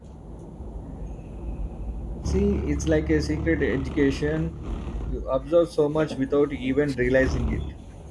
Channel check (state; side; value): identical; both; correlation 1.00